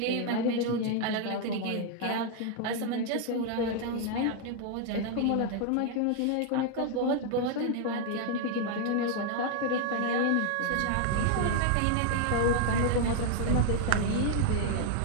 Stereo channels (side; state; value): both; different; correlation 0.00